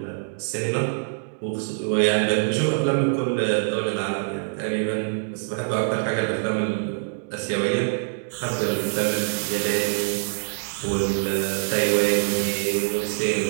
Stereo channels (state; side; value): silent; left; digital silence